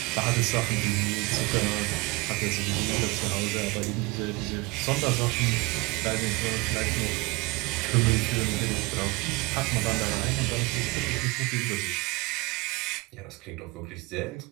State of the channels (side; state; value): left; quieter; 24.4 dB